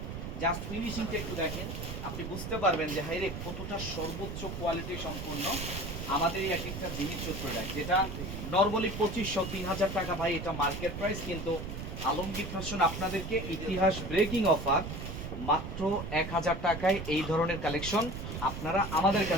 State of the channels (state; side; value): noise; right; rumble, 7 dB below the sound